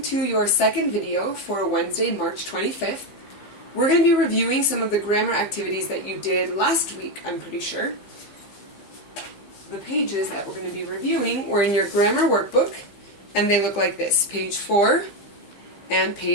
to your second video for Wednesday, March 25th. We're going to be reviewing some of the grammar activities that you did last week, I'm pretty sure. The pages that we're going to be reviewing were in your grammar workbook, and they look like this, page 4 and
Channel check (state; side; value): late; right; 15 ms